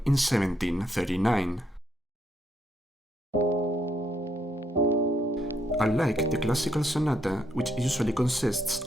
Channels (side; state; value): both; normal; correlation 0.74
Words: in 1739. Unlike the classical sonata, which usually consists